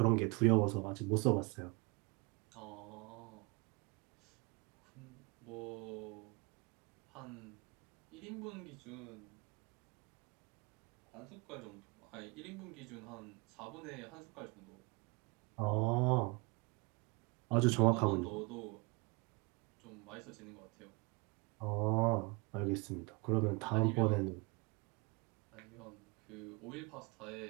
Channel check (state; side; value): quieter; left; 29.3 dB